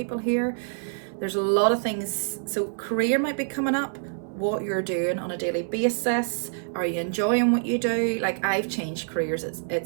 here. There's a lot of things. So career might be coming up. What you're doing on a daily basis. Are you enjoying what you do? Like, I've changed careers.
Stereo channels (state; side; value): silent; left; 61 dB below the other